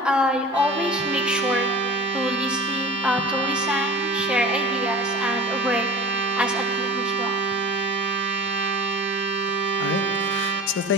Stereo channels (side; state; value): both; normal; correlation 0.39